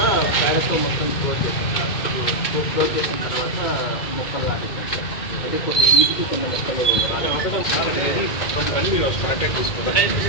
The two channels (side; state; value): right; late; 2.2 ms